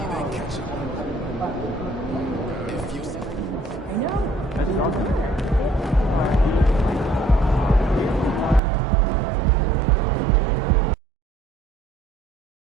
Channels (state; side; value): drops out; left; at 8.6 s